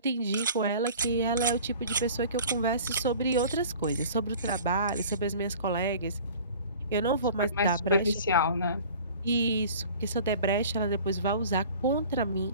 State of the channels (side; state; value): both; inverted; correlation -0.44